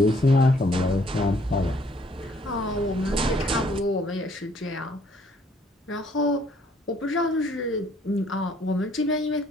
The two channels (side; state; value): both; normal; correlation 0.63